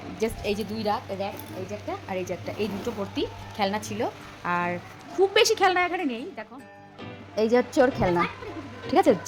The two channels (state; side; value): identical; both; correlation 1.00